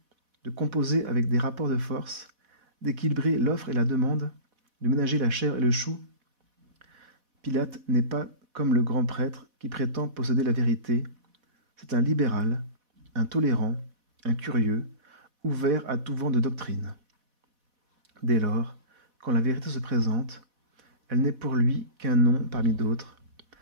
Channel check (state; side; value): late; left; 4.1 ms